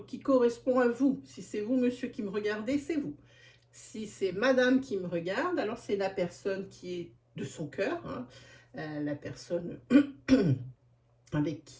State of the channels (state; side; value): identical; both; correlation 1.00